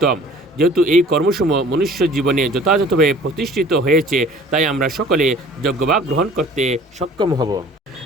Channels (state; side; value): normal; both; correlation 0.49